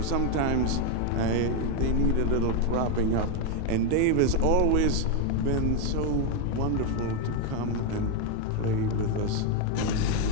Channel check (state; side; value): different; both; correlation 0.01